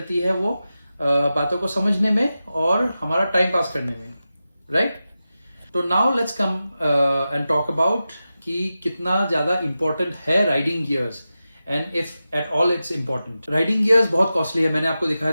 है वो बातों को समझने में और हमारा टाइम पास करने में, राइट। तो now let's come and talk about कि कितना ज्यादा इंपॉर्टेंट है riding gears and if at all it's important. Riding gears बहुत कॉस्टली है, मैंने आपको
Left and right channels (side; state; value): both; inverted; correlation -0.93